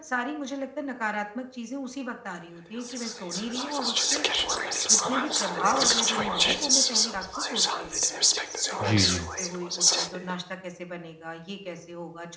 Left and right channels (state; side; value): identical; both; correlation 1.00